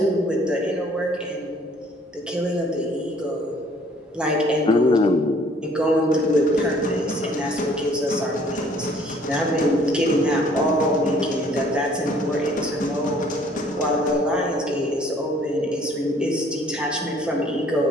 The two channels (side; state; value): both; normal; correlation 0.58